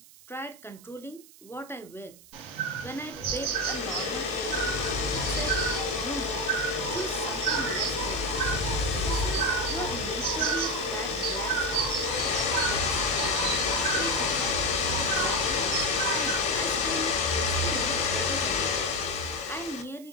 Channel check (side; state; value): right; noise; hiss, 22 dB below the sound